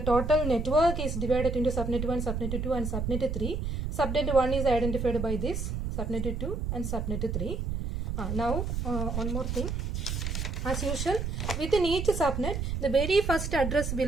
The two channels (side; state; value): right; noise; rumble, 2 dB below the sound